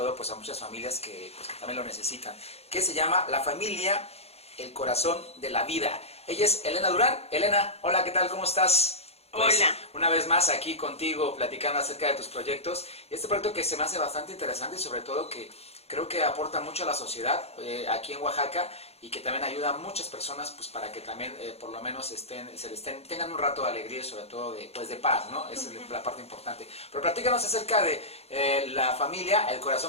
pues a muchas familias que también lo necesitan, que se llama La Familia, el Corazón de la Vida. Ella es Elena Durán. Elena, hola, ¿qué tal? ¿Cómo estás? Pues, hola. Una vez más aquí contigo platicando acerca de tus proyectos. Este proyecto que se me hace bastante interesante y sobre todo que creo que aporta mucho a la sociedad aquí en Oaxaca y que también ayuda a muchas personas pues para que también por lo menos tengan un rato de alegría y sobre todo de paz, ¿no? Esa es la parte importante. Pero platícanos acerca de La Familia, el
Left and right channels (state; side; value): late; right; 0.30 ms